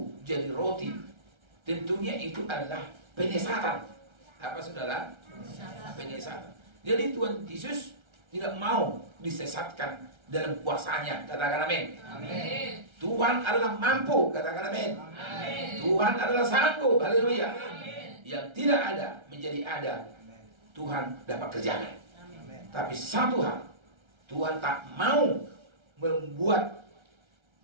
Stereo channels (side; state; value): left; late; 1.3 ms